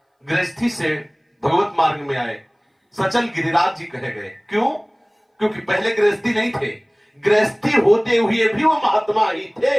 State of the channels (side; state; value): both; identical; correlation 1.00